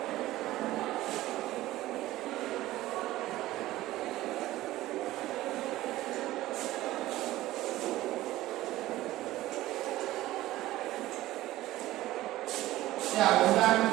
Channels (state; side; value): quieter; left; 16.2 dB